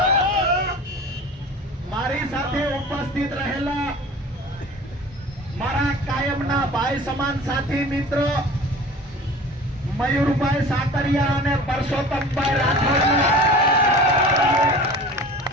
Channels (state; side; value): normal; both; correlation 0.40